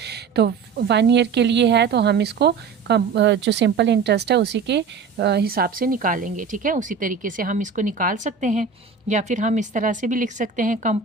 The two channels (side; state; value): left; quieter; 5.7 dB